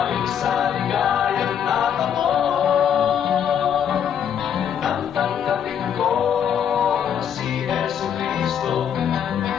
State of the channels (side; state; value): right; quieter; 8.6 dB